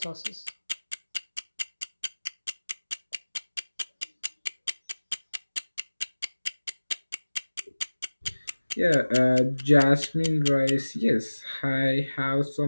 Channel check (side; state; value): both; inverted; correlation -1.00